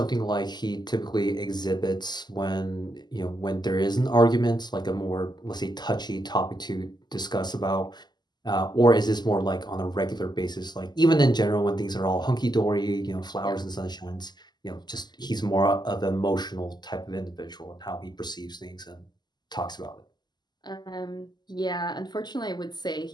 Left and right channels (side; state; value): right; late; 0.21 ms